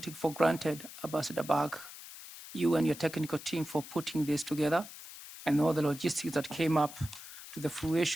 for granted, Ambassador Bag, you and your technical team for putting this together and all the logistics that came up to the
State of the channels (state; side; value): noise; left; hiss, 14 dB below the sound